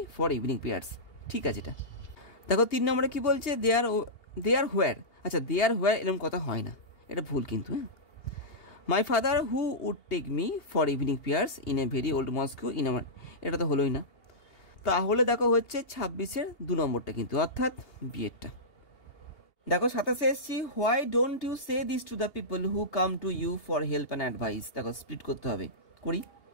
for evening prayers, ঠিক আছে এটা। দেখো 3 নম্বরে কি বলছে, দেয়ার হোয়ার। আচ্ছা, দেয়ার হোয়ার এরকম কথা হয় না, এটা ভুল কিন্তু, হ্যাঁ। My father who would take me for evening prayers in a very old mosque in our, এটা তো হলোই না। তাহলে দেখো হচ্ছে 26-এর 2 নম্বরটা কিন্তু, অর্থাৎ বিয়েরটা। দেখো 27-এ এসছি, why don't you say this to the people who come to you for help and advice. দেখো স্প্লিট করতে হবে, করি।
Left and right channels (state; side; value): late; right; 2.8 ms